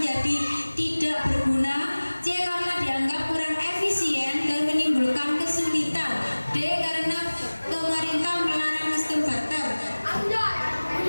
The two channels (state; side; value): inverted; both; correlation -1.00